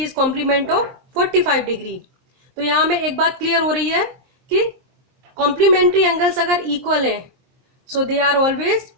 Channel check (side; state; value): left; late; 23 ms